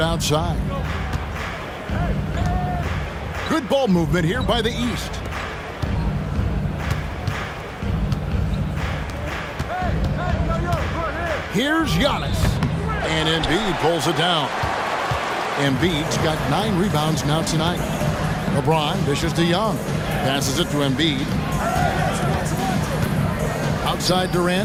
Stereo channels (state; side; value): identical; both; correlation 1.00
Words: Good ball movement here by the East. Here's Giannis. And Embiid pulls it down. Embiid's got 9 rebounds now tonight. LeBron dishes to Young. Passes it to Embiid. Outside